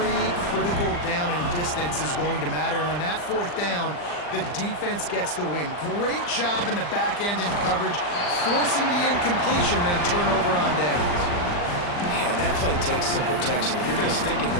critical down and distance is going to matter. And on that fourth down, the defense gets the win. Great job in the back end in coverage, forcing the incompletion and a turnover on downs. Man, that play takes some protection. If you're going to stick it in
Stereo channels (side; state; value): right; late; 40 ms